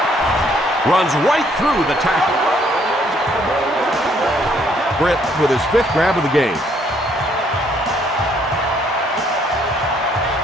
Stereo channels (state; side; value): normal; both; correlation 0.66